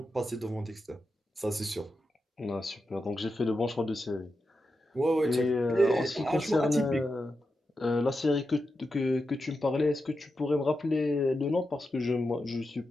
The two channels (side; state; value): both; normal; correlation 0.89